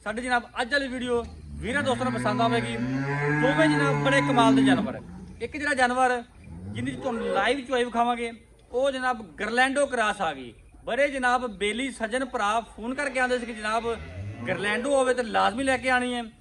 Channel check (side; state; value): both; identical; correlation 1.00